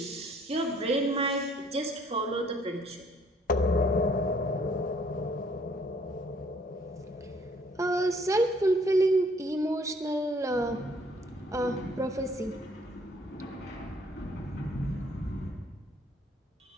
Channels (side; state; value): both; normal; correlation 0.62